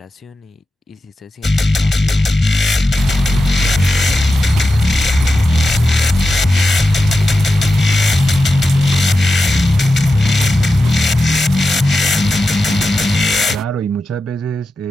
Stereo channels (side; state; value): both; normal; correlation 0.91